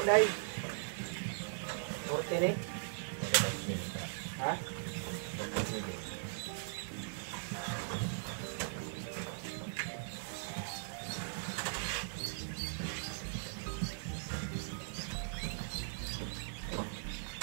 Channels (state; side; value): silent; left; digital silence